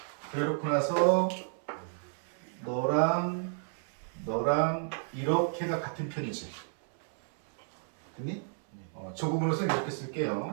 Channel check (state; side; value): silent; left; 57 dB below the other